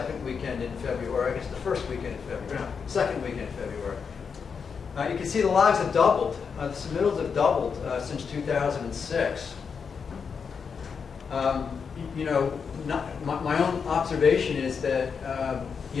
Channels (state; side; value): quieter; right; 6.0 dB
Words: weekend in February. I guess the first weekend in February. No, second weekend in February. You can see the logs have doubled. The submittals have doubled since 2006. You know, my own observation is that